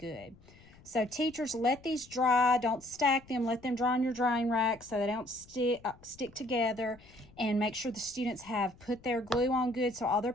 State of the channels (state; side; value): noise; left; rumble, 24 dB below the sound